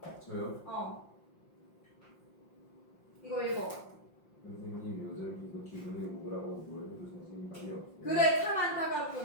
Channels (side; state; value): right; late; 5.7 ms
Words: 저요? 이거 읽어. 선생님 요즘 계속 기분이 우울하고 뭘 해도 자신감이 없어요. 그래, 참